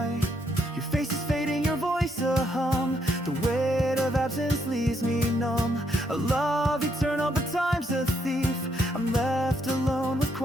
Your face is fading, your voice a hum. The weight of absence leaves me numb. A love eternal, but time's a thief. I'm left alone with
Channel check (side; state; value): both; normal; correlation 0.75